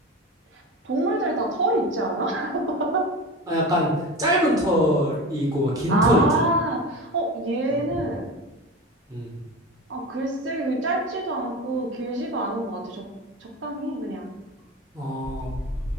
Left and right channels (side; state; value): both; normal; correlation 0.29